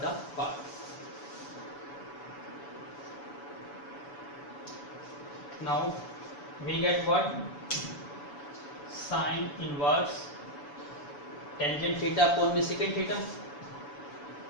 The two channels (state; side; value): late; right; 7.0 ms